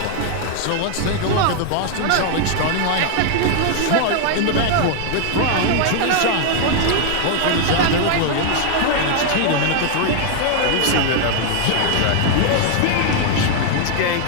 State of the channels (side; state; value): both; different; correlation 0.00